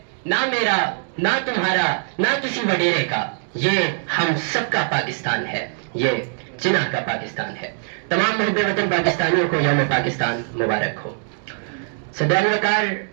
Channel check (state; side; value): silent; left; 64 dB below the other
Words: نہ میرا نہ تمہارا نہ کسی وڈیرے کا، یہ ہم سب کا پاکستان ہے، یہ جناح کا پاکستان ہے۔ تمام محب وطن پاکستانیوں کو یوم پاکستان مبارک ہو۔ صدر وقار،